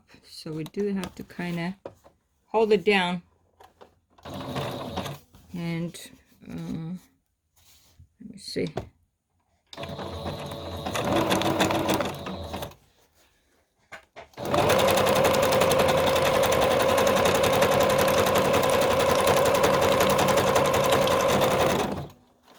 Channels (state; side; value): identical; both; correlation 1.00